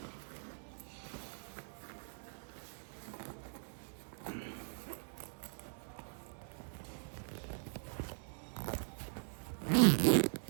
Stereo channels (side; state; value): left; silent; digital silence